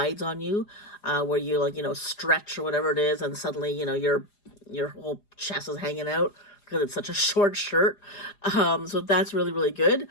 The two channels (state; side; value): late; right; 4.9 ms